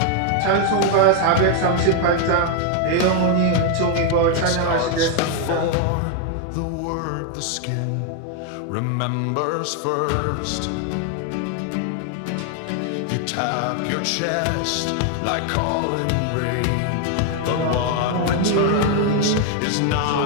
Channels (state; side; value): different; both; correlation 0.00